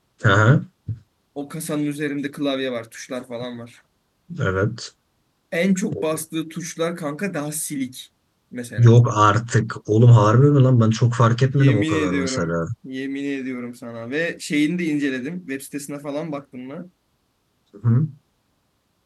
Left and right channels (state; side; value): identical; both; correlation 1.00